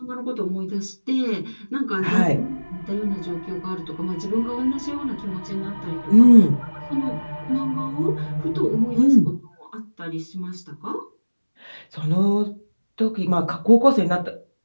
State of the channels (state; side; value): inverted; both; correlation -1.00